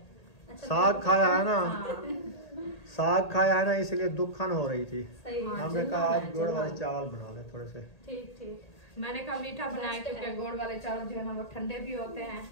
अच्छा, साग खाया है ना, हाँ। साग खाया है ना, इसलिए दुखन हो रही थी। सही। हमने कहा आज गोड़ वाले चावल बना ले थोड़े से। ठीक ठीक। मैंने कहा मीठा बनाए, क्योंकि गोड़ वाले चावल जो है ना वो ठंडे भी होते हैं।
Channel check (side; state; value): right; late; 1.8 ms